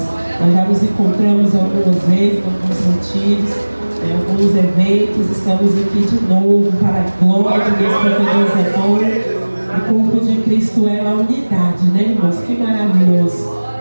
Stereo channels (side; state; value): both; inverted; correlation -1.00